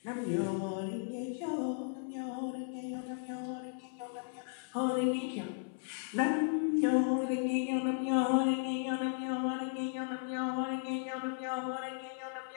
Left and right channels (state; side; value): silent; right; 54 dB below the other